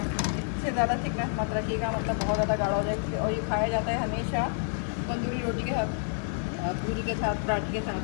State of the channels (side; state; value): right; silent; 59 dB below the other